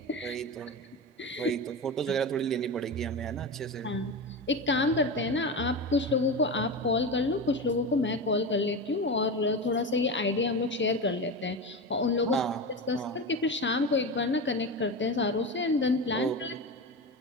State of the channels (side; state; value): both; normal; correlation 0.22